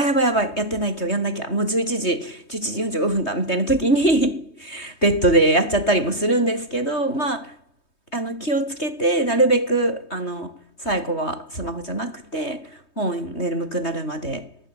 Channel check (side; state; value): right; late; 3.2 ms